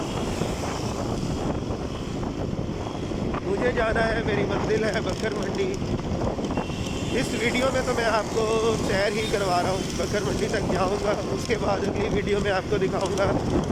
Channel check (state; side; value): identical; both; correlation 1.00